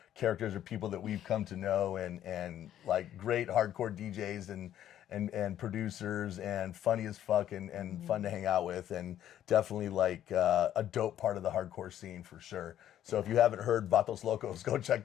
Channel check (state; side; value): quieter; right; 11.3 dB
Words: characters or people that we've come to know, and like great hardcore DJs and producers, and funny as fuck, and fun to hang out with, and definitely like a dope part of the hardcore scene for sure. So if you haven't heard Vatos Locos, go check